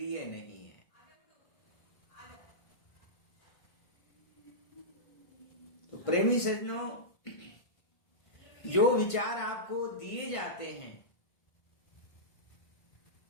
नहीं है। तो प्रेमी सज्जनों, जो विचार आपको दिए जाते हैं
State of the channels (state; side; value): late; right; 1.5 ms